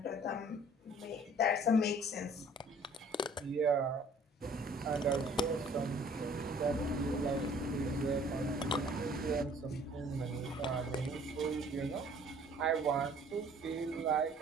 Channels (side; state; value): both; normal; correlation 0.54